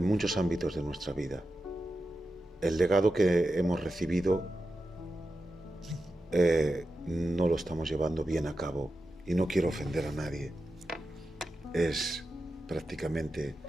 muchos ámbitos de nuestra vida. El legado que hemos recibido no lo estamos llevando bien a cabo, y no quiero ofender a nadie. Es prácticamente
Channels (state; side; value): normal; both; correlation 0.90